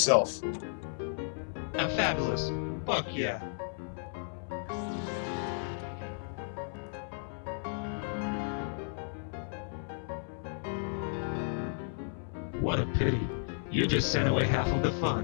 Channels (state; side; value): silent; right; 55 dB below the other